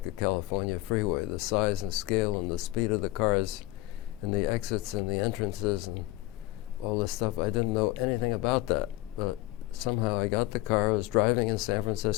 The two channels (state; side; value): quieter; right; 17.8 dB